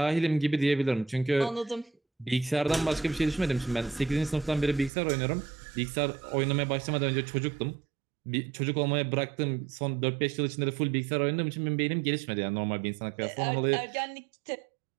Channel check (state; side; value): drops out; left; at 4.9 s